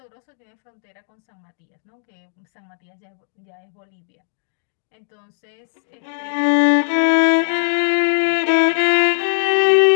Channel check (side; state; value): right; silent; digital silence